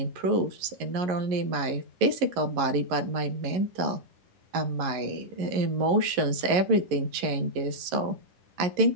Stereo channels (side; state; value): left; late; 11 ms